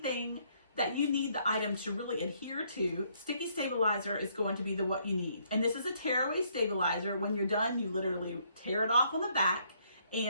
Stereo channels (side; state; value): both; inverted; correlation -0.69